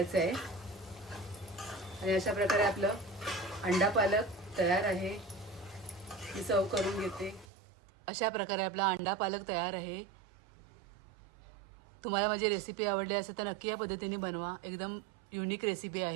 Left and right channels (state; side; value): drops out; left; at 7.5 s